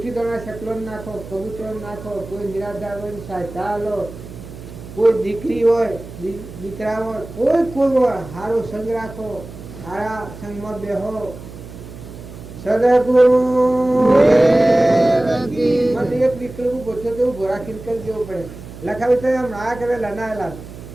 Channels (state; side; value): noise; right; hum, 14 dB below the sound